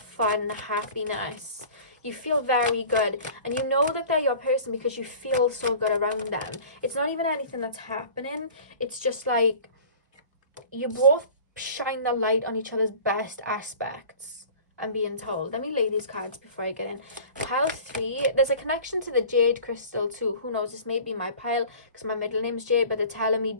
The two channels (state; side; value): inverted; both; correlation -0.43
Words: happiness. You feel very good. And you know that they're your person because you feel so good around them. It's not even anything that's happening. It's just like you both shine the light on each other's best aspects, I'm being told. Let me lay these cards before I get in. Pile 3, there's a connection to the jade crystal too. Who knows, this may be my pile because my middle name's Jade, but they're telling me